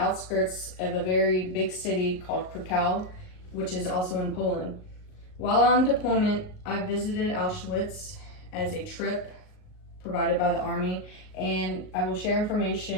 of a very big city called Krakow, which is also in Poland. While on deployment, I visited Auschwitz as a trip provided by the Army, and I will share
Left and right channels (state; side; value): late; right; 38 ms